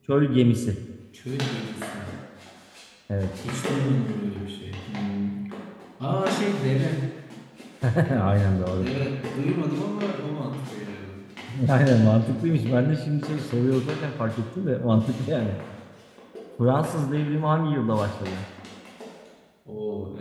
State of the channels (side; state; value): both; identical; correlation 1.00